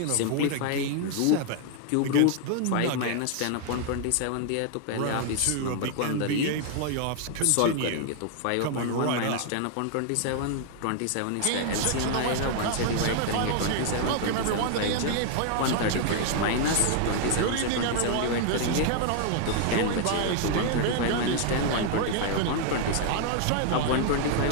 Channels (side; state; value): both; different; correlation 0.00